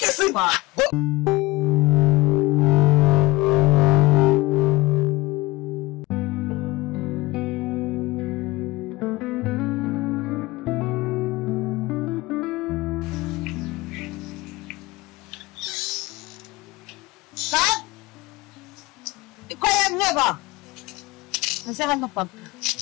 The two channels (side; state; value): right; quieter; 20.9 dB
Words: simba. Ba? Nasaan na pag?